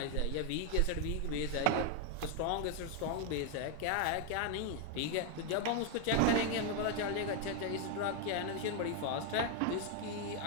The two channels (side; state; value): both; different; correlation 0.01